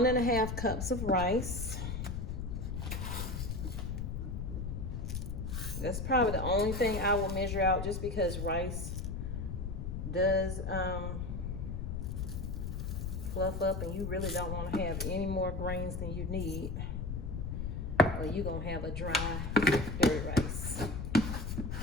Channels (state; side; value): noise; left; rumble, 3 dB below the sound